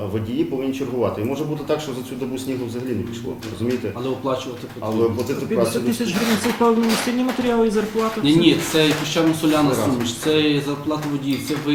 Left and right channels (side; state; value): both; identical; correlation 1.00